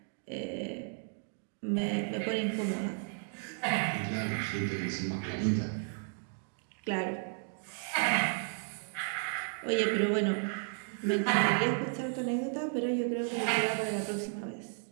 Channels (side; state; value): left; silent; 55 dB below the other